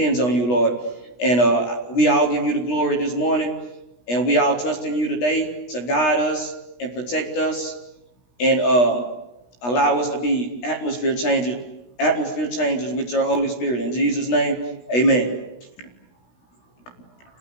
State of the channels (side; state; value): right; late; 16 ms